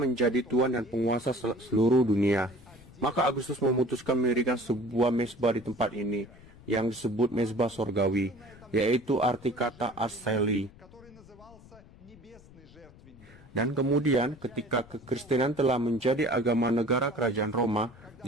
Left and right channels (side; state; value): left; noise; rumble, 22 dB below the sound